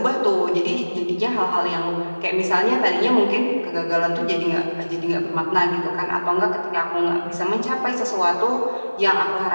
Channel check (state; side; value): inverted; both; correlation -1.00